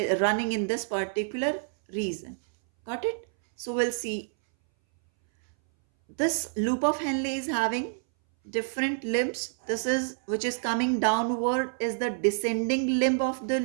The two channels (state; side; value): silent; left; 59 dB below the other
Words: running in this particular region. Got it? So we'll see this loop of Henle is having different limbs. This is which is coming downward is the descending limb of the